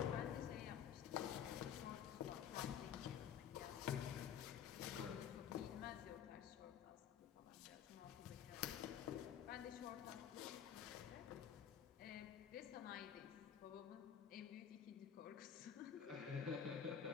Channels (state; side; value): quieter; right; 8.6 dB